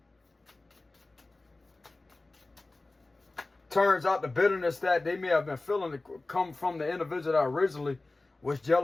Turns out the bitterness that they may have been feeling to come from the individual that originally was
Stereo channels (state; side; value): quieter; right; 3.1 dB